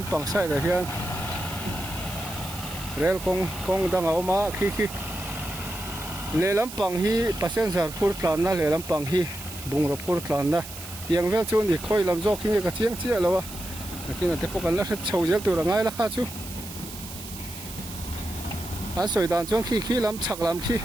sai da hian rail kong dang a ma khi le lampang hi passenger phur tlan na le lampang hi bungrop phur tlan na tiang vel chu ni khoi lam jok hi ka chiang chia lawa lakin ate ko kan la chho jel tu rangai la kha chu an soi dan chong khi lam chak lam khi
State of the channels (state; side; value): noise; right; hiss, 12 dB below the sound